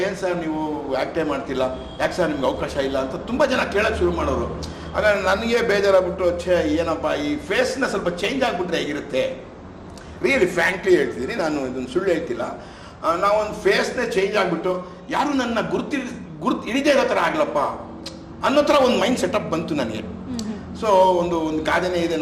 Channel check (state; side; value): identical; both; correlation 1.00